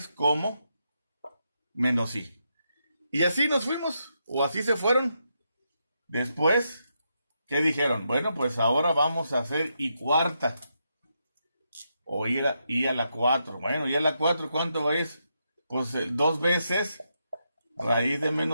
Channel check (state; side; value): inverted; both; correlation -0.82